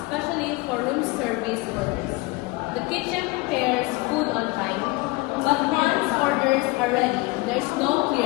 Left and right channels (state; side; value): quieter; right; 23.1 dB